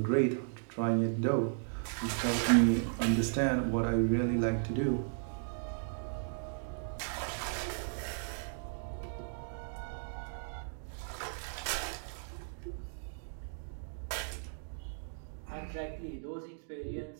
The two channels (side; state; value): left; silent; digital silence